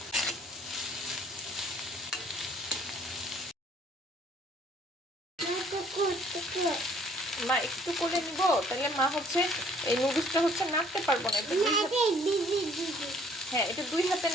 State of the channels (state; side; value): normal; both; correlation 0.59